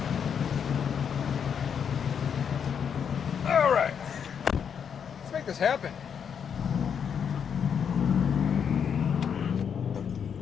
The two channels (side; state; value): right; quieter; 7.5 dB